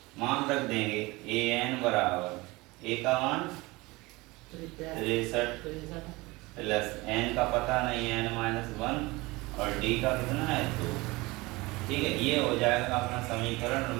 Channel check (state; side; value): quieter; left; 22.5 dB